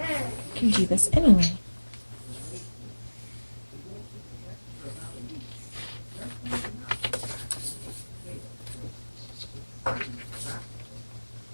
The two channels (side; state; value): both; inverted; correlation -1.00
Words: can do this anyway.